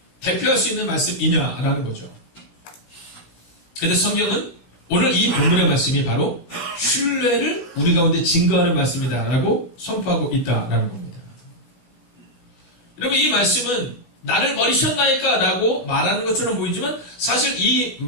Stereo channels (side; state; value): right; late; 17 ms